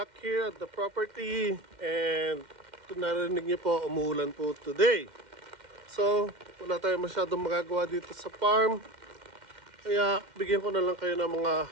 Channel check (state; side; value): late; left; 2.1 ms